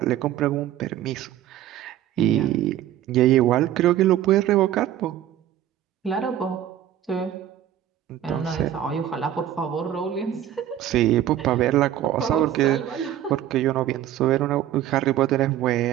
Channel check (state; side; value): quieter; left; 11.7 dB